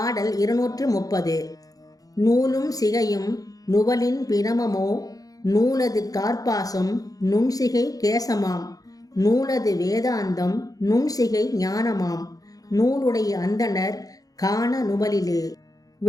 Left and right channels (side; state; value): right; late; 0.17 ms